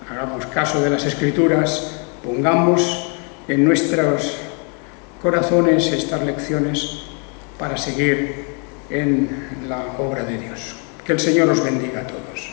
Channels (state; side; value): quieter; right; 37.4 dB